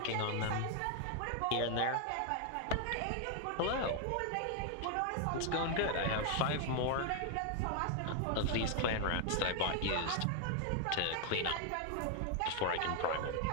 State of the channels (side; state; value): both; different; correlation 0.00